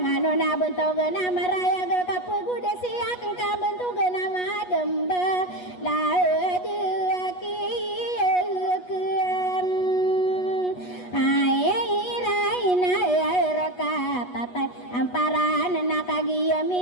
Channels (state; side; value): late; right; 8.2 ms